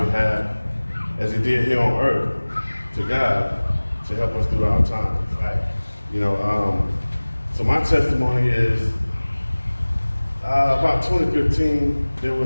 behalf as he did here on earth to God to help us through our times. So my testimony is about 2015, there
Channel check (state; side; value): inverted; both; correlation -1.00